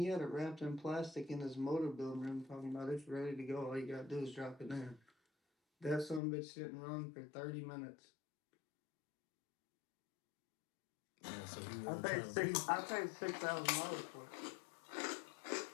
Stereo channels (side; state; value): right; drops out; at 6.2 s